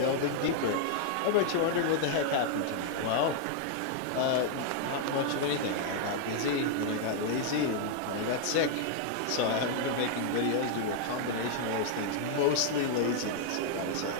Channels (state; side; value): different; both; correlation -0.01